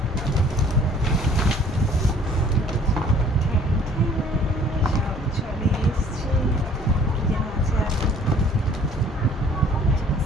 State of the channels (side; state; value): both; normal; correlation 0.55